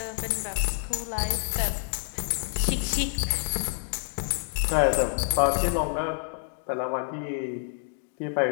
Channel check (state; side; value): silent; right; digital silence